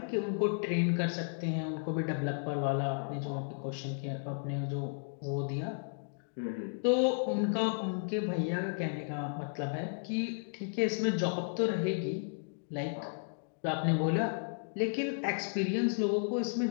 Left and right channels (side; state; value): right; silent; digital silence